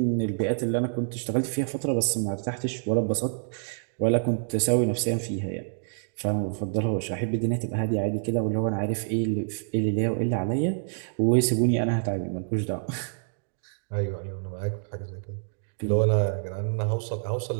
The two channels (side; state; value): left; silent; digital silence